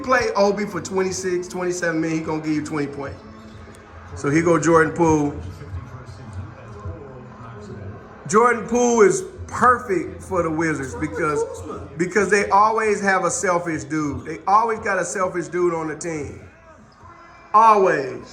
play Obi for 26, 27 minutes, he gonna give you 20 points. So he go Jordan Poole. Jordan Poole is perfect for the Wizards because they always have a selfish dude. They always got a selfish dude on the team.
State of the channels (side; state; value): both; identical; correlation 1.00